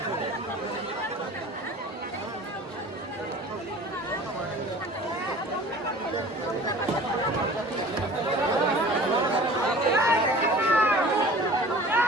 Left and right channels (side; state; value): both; normal; correlation 0.44